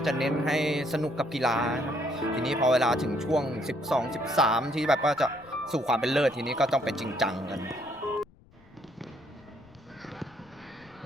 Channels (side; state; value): left; noise; rumble, 27 dB below the sound